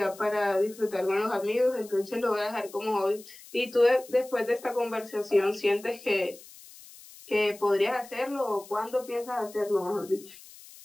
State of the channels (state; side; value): noise; left; hiss, 20 dB below the sound